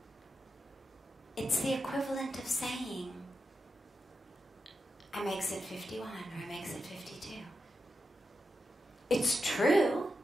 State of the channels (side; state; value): both; normal; correlation 0.89